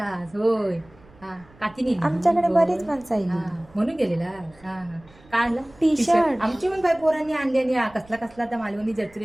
होय हा काकी नेली. आमच्याकडे होय. बरीच माणसं हा, आली. म्हणून गेलेला. हा हा काय आणला? टी-शर्ट. आमची पण बाय पोरांनी आणलेली हा. कसला कसला त्या मालवणी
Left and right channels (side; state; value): right; noise; rumble, 26 dB below the sound